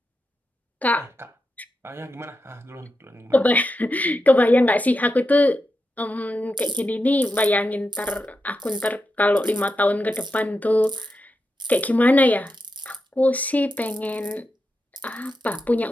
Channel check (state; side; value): normal; both; correlation 0.87